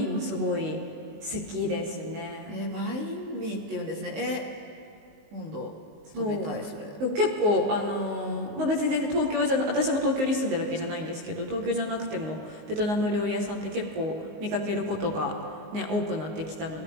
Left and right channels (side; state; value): left; late; 19 ms